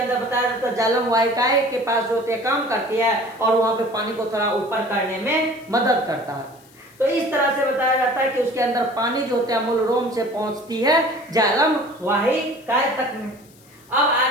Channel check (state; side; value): noise; left; hiss, 27 dB below the sound